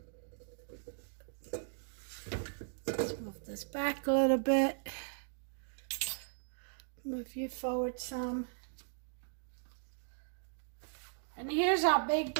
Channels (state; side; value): silent; left; digital silence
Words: Let's move this back a little bit. Move you forward some. And here's our big